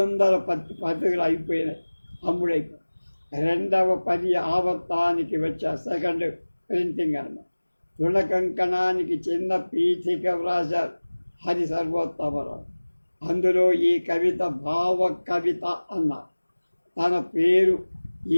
పత్రికలు అయిపోయినాయి, అమ్ముడైపోయి. 2వ పది ఆవర్తానికి వచ్చా, సెకండ్ ప్రింటింగ్ అన్నమాట. తృణకంకణానికి చిన్న పీఠిక వ్రాశారు హరి సర్వోత్తమరావు. అందులో ఈ కవిత భావ కవిత అన్నారు. తన పేరు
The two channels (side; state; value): both; inverted; correlation -1.00